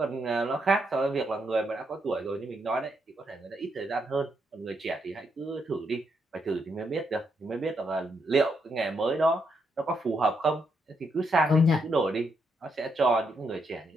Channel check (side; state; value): both; normal; correlation 0.79